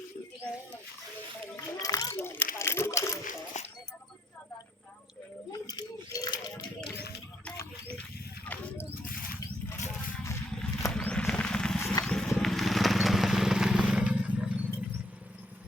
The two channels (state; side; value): normal; both; correlation 0.70